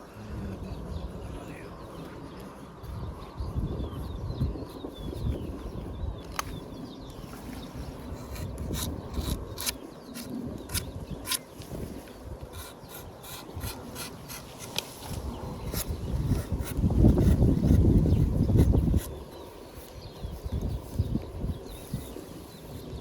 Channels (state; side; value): identical; both; correlation 1.00